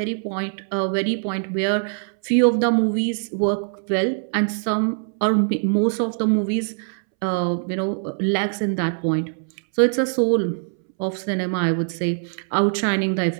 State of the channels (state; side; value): silent; left; 64 dB below the other